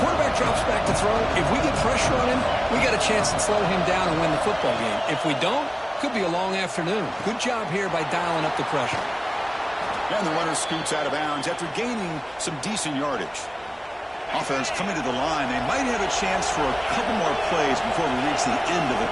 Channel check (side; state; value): both; identical; correlation 1.00